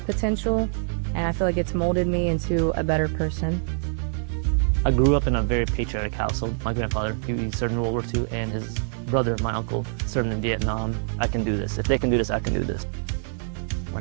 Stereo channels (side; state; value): left; silent; digital silence